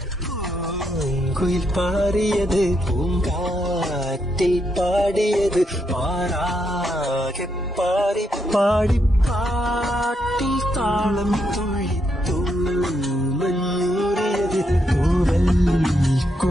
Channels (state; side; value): normal; both; correlation 0.79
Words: കുയിൽ പാറിയത് പൂങ്കാറ്റിൽ പാടിയത് പാറാകെ പാടി പാടി പാട്ടിൽ താളം തുള്ളി തൂമഞ്ഞൂറിയത് തൂവൽ